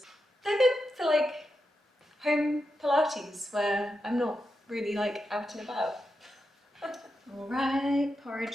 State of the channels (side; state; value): both; normal; correlation 0.87